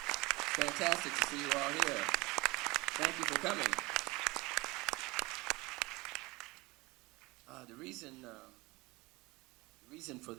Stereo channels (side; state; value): left; quieter; 23.6 dB